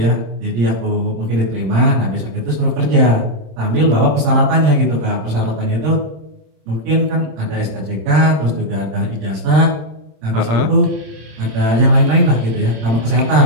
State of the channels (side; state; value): left; late; 26 ms